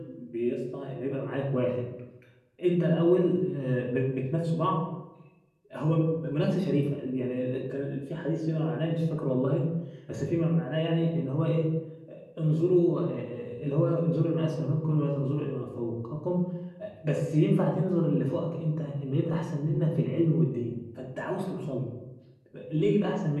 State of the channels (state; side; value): identical; both; correlation 1.00